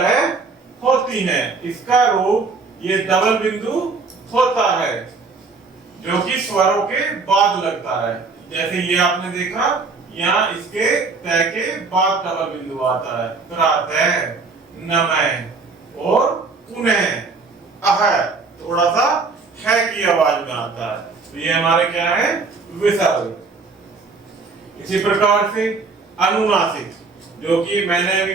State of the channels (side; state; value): left; quieter; 4.2 dB